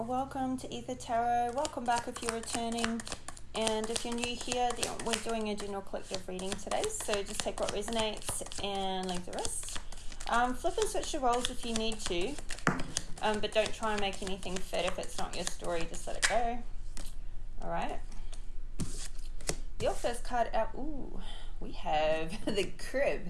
to Ether Tarot. Welcome back if you're returning. And if you're new here, we're doing a general collective reading today. So just take what resonates and leave the rest. Flip and switch your roles if you need to. But don't try and make anything fit. If it's not your story, just let it go. Alright. Your first card out. Ooh, we have the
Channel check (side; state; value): both; identical; correlation 1.00